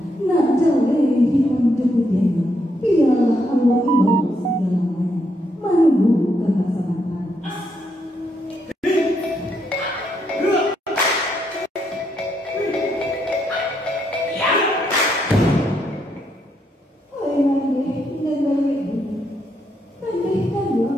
nak jauh hitam jeputiannya, biarlah Allah imam segalanya, menunggu kebersamaan.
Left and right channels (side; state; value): both; normal; correlation 0.77